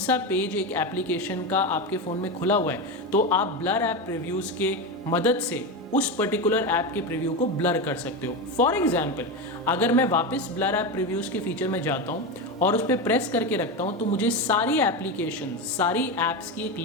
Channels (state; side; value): normal; both; correlation 0.17